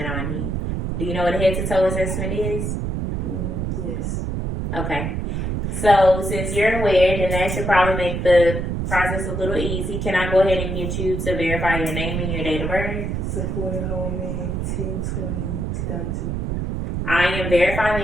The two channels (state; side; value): noise; right; rumble, 2 dB below the sound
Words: on you. Do you know what a head to toe assessment is? Yes. Okay. So since you're aware, then that should probably make the process a little easy. Can I go ahead and get you to verify your name and your date of birth? Sequoia Holman, 10/20/2002. I am verifying